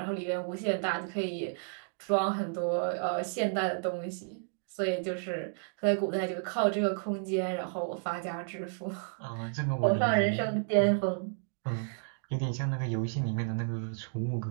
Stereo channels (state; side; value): silent; left; digital silence